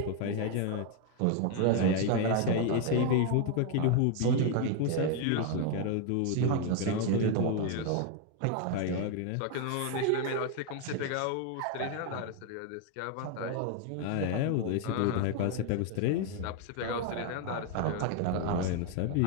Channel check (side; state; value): both; different; correlation 0.01